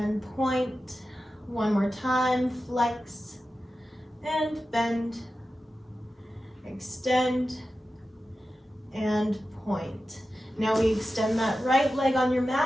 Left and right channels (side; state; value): both; normal; correlation 0.93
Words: point. One more time, flex and bend, extend and point. Now we extend that right leg on your